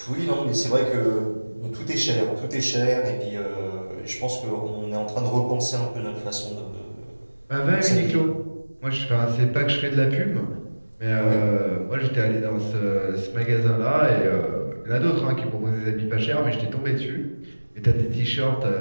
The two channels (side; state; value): both; inverted; correlation -1.00